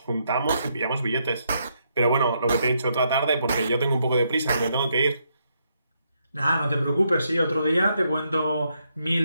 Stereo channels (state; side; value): inverted; both; correlation -0.77